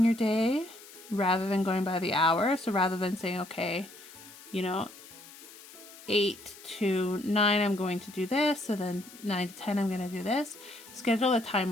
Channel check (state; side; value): noise; left; hiss, 19 dB below the sound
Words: your day rather than going by the hour. So rather than saying, okay, 8 to 9 I'm going to do this, so then 9 to 10 I'm going to do this. Schedule a